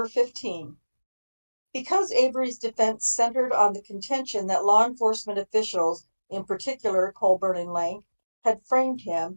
15. Because Avery's defense centered on the contention that law enforcement officials, in particular Colburn and Lank, had framed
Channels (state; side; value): inverted; both; correlation -1.00